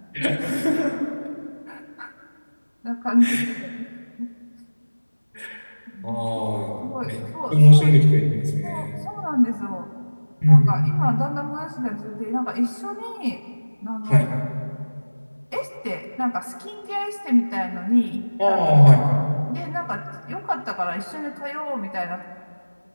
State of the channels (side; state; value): both; inverted; correlation -1.00